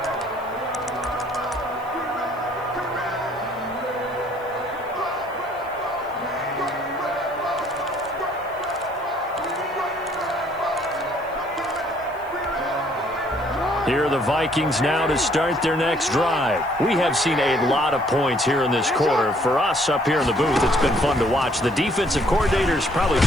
Here are the Vikings now to start their next drive. We have seen a lot of points here in this quarter. For us up here in the booth, it's been fun to watch. The defensive coordinators probably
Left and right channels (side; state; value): right; noise; hiss, 27 dB below the sound